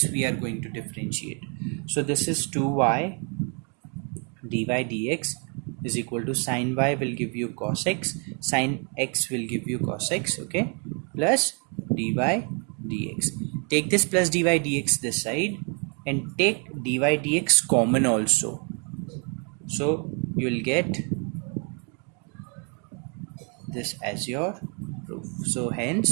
we are going to differentiate. So this is 2y dy dx is equal to sine y will give you cos x, sine x will give you cos x, okay, plus dy dx. Take this plus dy dx this side and take dy dx common also. So you will get this as your proof. So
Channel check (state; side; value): quieter; left; 38.3 dB